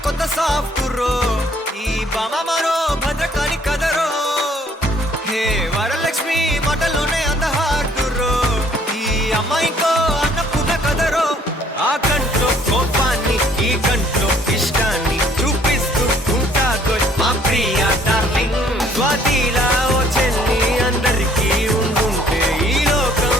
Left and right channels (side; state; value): both; normal; correlation 0.61